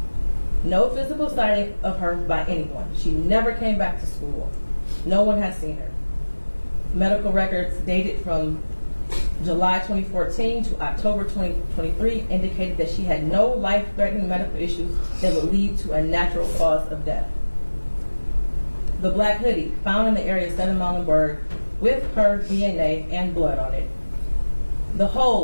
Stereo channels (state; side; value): inverted; both; correlation -1.00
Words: No physical sighting of her by anyone. She never came back to school. No one has seen her. Medical records dated from July 2014 to October 2023 indicated that she had no life-threatening medical issues that would lead to a natural cause of death. The black hoodie found in the area of 7 Muhlenberg with her DNA and blood on it. The